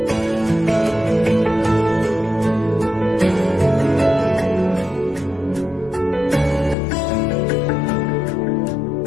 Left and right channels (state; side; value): drops out; right; at 6.8 s